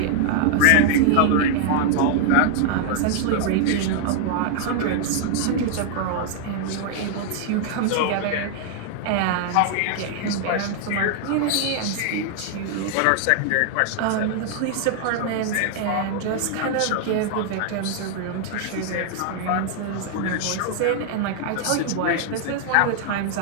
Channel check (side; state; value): both; different; correlation 0.00